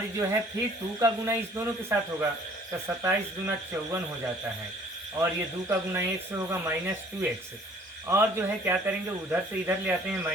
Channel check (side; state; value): both; normal; correlation 0.55